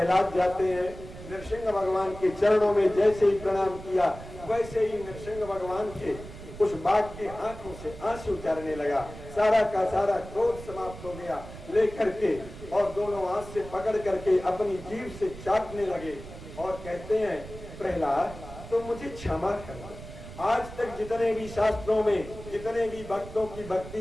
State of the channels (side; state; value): right; noise; rumble, 14 dB below the sound